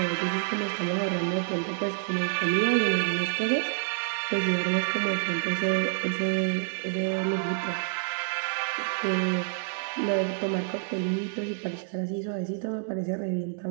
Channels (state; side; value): silent; left; digital silence